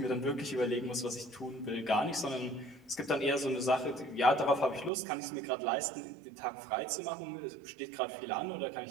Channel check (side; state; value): left; drops out; at 4.9 s